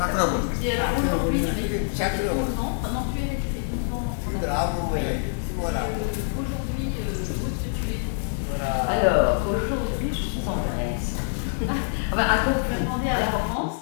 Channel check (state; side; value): silent; right; digital silence